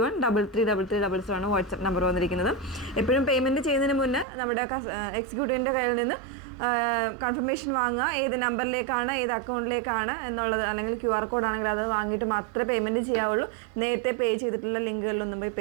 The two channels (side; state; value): left; drops out; at 4.2 s